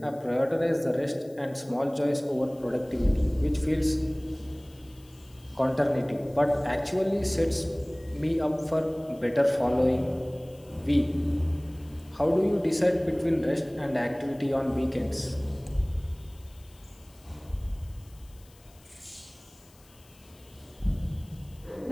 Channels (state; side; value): noise; left; hiss, 27 dB below the sound